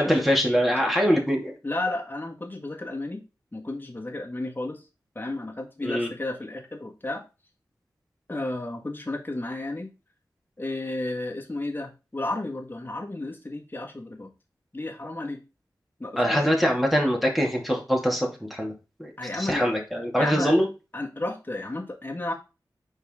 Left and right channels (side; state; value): both; normal; correlation 0.88